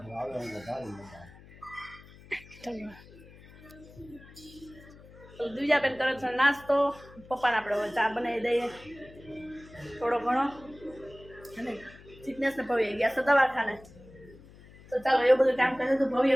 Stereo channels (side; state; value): left; noise; hum, 21 dB below the sound